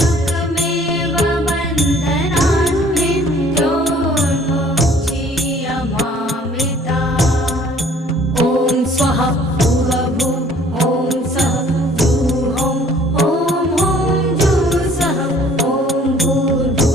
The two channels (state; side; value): normal; both; correlation 0.56